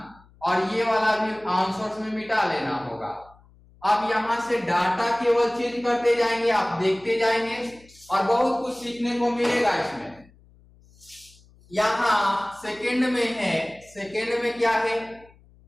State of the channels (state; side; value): noise; left; hum, 28 dB below the sound